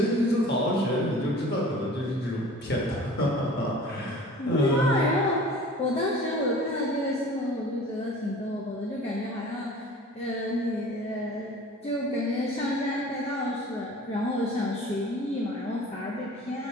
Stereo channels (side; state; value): both; normal; correlation 0.44